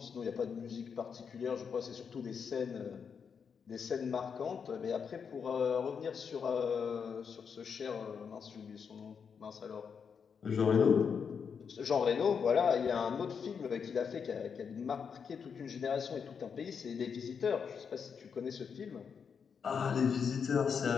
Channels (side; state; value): right; quieter; 6.5 dB